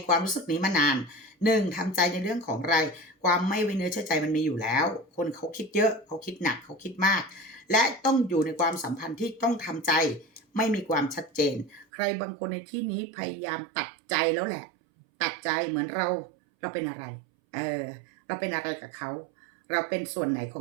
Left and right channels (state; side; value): drops out; left; at 11.9 s